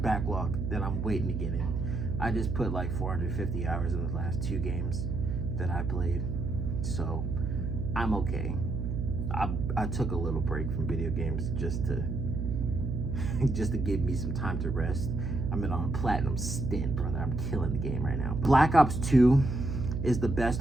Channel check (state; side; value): noise; right; hum, 2 dB below the sound